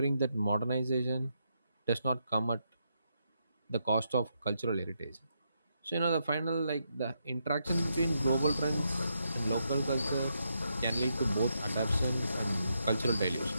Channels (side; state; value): both; inverted; correlation -0.81